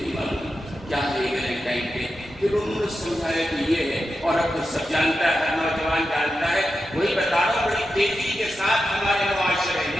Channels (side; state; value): both; normal; correlation 0.89